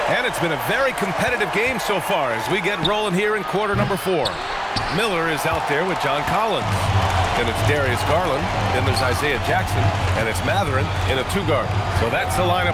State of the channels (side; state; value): both; identical; correlation 1.00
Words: And it's been a very competitive game so far as we get rolling here in quarter number 4. Miller is out there with John Collins. Then it's Darius Garland. Then there's Isaiah Jackson. And it's Mathurin in a 2-guard. So that's the